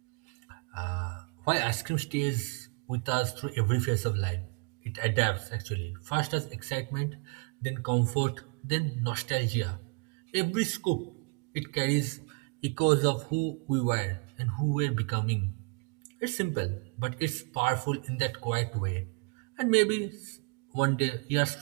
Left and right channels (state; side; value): quieter; left; 33.3 dB